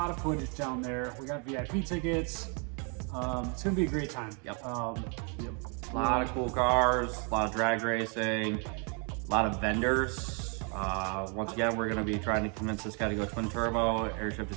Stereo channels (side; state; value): left; quieter; 36.8 dB